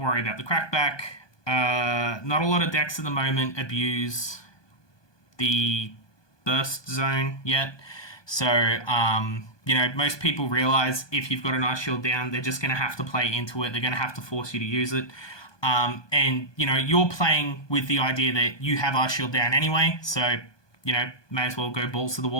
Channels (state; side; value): late; right; 1.2 ms